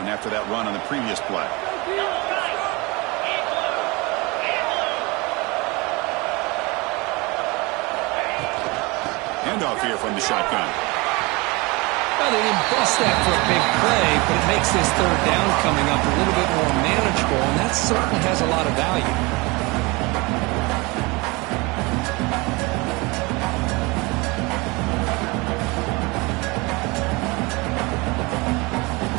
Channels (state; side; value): quieter; left; 25.4 dB